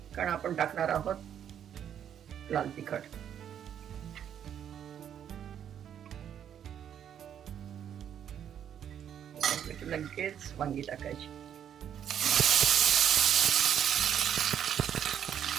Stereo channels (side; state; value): left; quieter; 9.3 dB